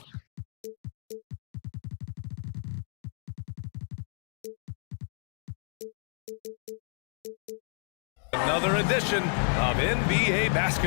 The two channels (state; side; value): silent; right; 57 dB below the other